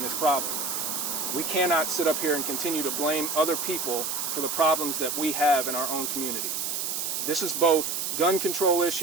this problem. We cannot sit up here and continue to blame other people for the problems that we have in our own community. This is both gun control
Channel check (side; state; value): right; noise; hiss, 2 dB below the sound